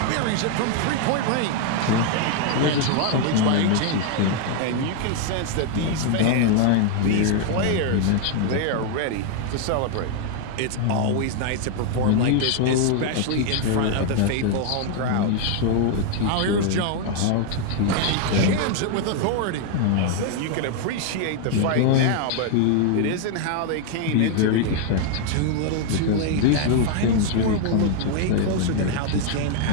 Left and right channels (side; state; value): both; different; correlation 0.00